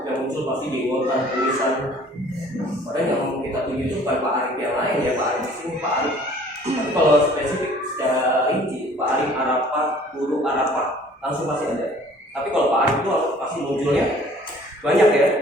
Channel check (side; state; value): both; normal; correlation 0.53